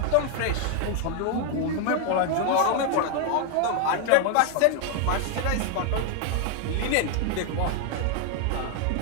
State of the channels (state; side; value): different; both; correlation 0.00